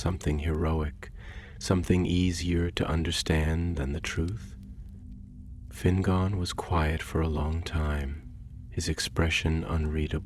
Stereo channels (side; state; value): both; identical; correlation 1.00